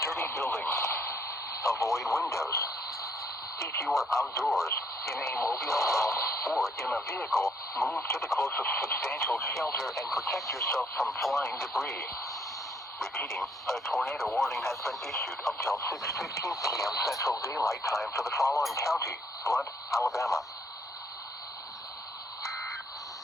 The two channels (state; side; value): normal; both; correlation 0.68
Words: building. Avoid windows. If you are outdoors, in a mobile home, or in a vehicle, move to the closest substantial shelter and protect yourself from flying debris. Repeating, a tornado warning has been issued until 6:15 p.m. Central Daylight Time for the following county, Blunt, Alabama.